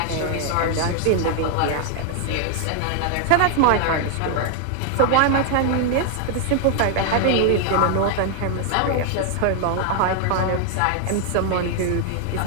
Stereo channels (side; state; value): both; different; correlation 0.00